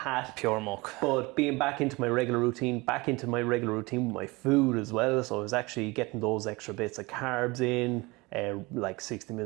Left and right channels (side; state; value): left; quieter; 24.0 dB